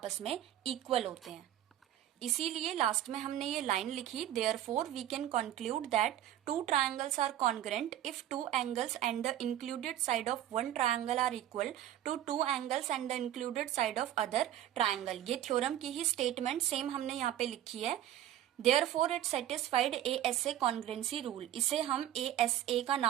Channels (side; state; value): left; quieter; 12.1 dB